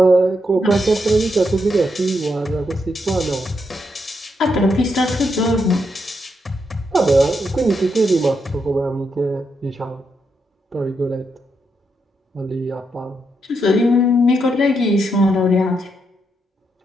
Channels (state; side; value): normal; both; correlation 0.81